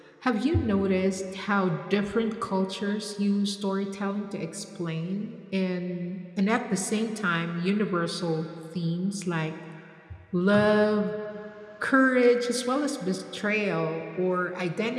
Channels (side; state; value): both; identical; correlation 1.00